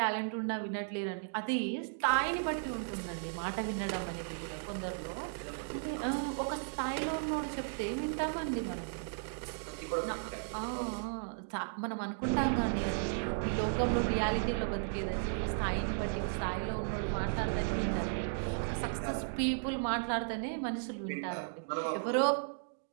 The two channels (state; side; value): silent; left; digital silence